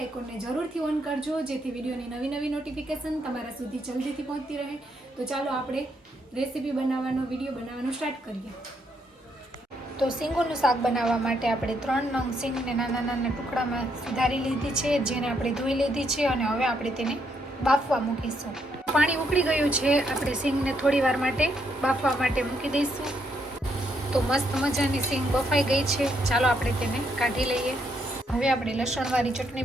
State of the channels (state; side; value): normal; both; correlation 0.75